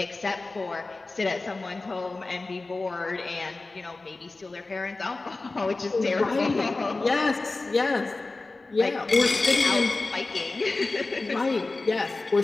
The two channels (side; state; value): right; quieter; 3.4 dB